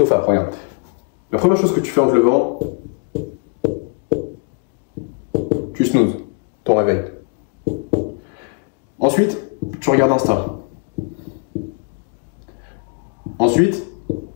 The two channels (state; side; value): quieter; right; 34.9 dB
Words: regarde. La première chose que tu fais en te levant, tu snoozes ton réveil. Ensuite, tu regardes Insta. Ensuite,